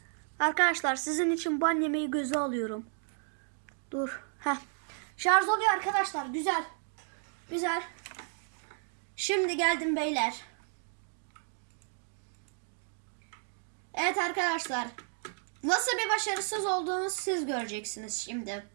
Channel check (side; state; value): left; silent; 56 dB below the other